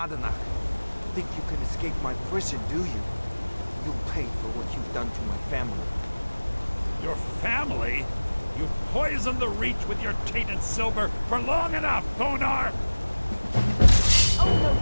think you can escape my prison, do you? You'll pay for what you've done to my family. Your family? You've poisoned the Reach with your tainted silver for long enough, Thonar! Oh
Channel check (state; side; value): inverted; both; correlation -1.00